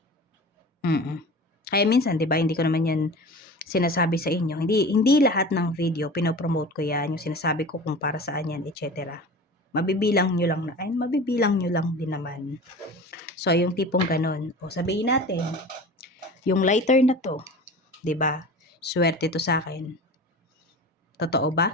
Kaya minsan, 'di ba, hindi ko naman 'yan sinasabi sa inyo. Hindi lahat ng video pino-promote ko 'yan, yung sinasabi ko kung para saan 'yan, etc. Mabibilang nyo lang din naman. So, yung tipong ganon. O sabihin natin, yung lighter na to, 'di ba? Swerte to sa akin. Totoo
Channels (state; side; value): normal; both; correlation 0.36